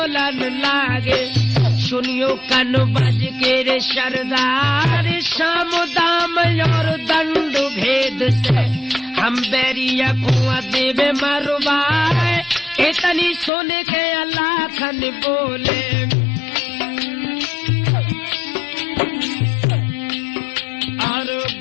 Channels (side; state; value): right; drops out; at 13.5 s